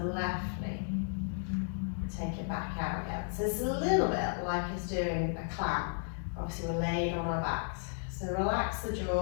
knee. Take it back out again. So it's a little bit like it's doing a clam. Obviously we're laid on our backs. So relax the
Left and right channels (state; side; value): silent; right; digital silence